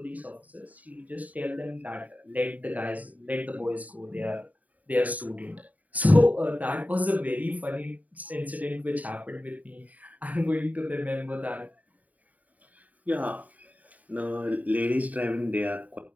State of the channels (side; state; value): left; late; 0.074 ms